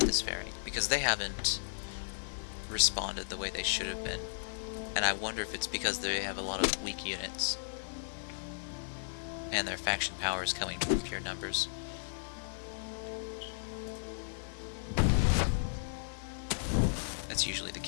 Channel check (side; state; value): right; silent; digital silence